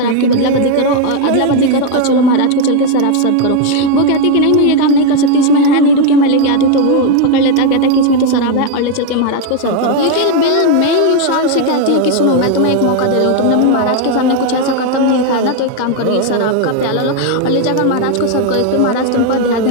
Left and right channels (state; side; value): different; both; correlation 0.01